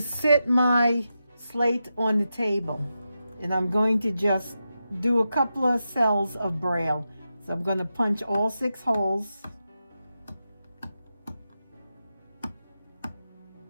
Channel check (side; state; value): both; inverted; correlation -0.89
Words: my slate on the table, and I'm going to just do a couple of cells of braille. So I'm going to punch all 6 holes.